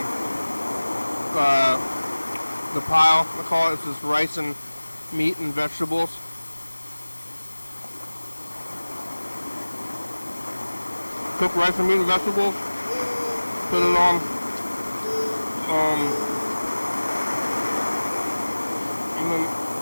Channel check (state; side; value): inverted; both; correlation -1.00